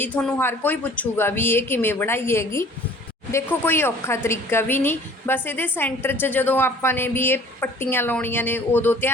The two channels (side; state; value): both; normal; correlation 0.50